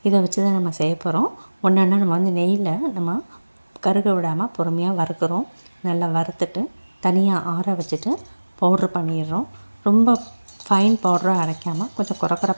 இதை வச்சு தான் நம்ம செய்ய போகிறோம். ஒன்றா நம்ம நெய்யில் நம்ம கருக விடாமல் பொறுமையாக வறுக்கிறோம். நல்லா வறுத்துட்டு தனியாக ஆற வச்சுட்டு பவுட்ரு பண்ணிடுறோம். ரொம்ப ஃபைன் பவுடராக அரைக்காமல் கொஞ்சம்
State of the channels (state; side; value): inverted; both; correlation -1.00